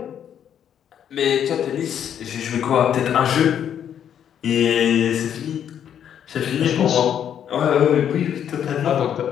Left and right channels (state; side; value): quieter; right; 9.2 dB